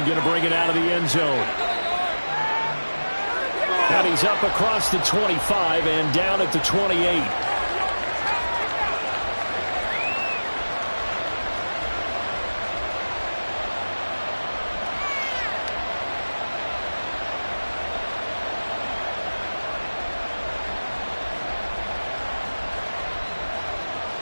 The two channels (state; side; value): inverted; both; correlation -1.00